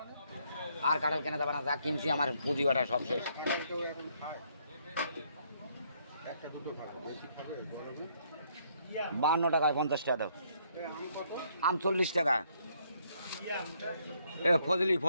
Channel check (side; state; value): both; inverted; correlation -0.70